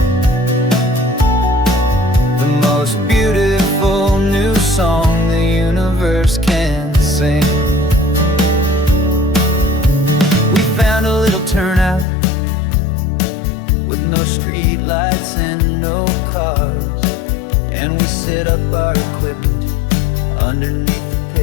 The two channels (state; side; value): drops out; right; at 12.1 s